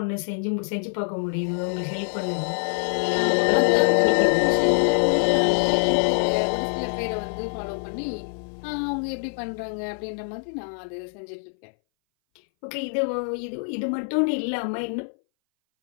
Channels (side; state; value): right; silent; 60 dB below the other